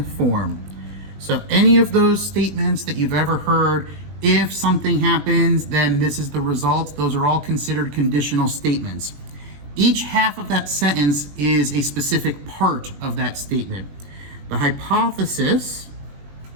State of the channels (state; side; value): late; left; 20 ms